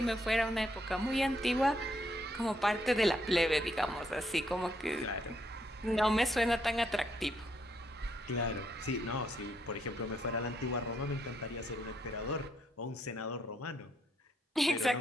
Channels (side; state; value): both; normal; correlation 0.75